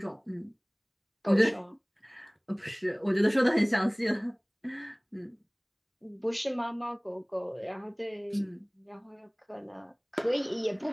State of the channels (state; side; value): identical; both; correlation 1.00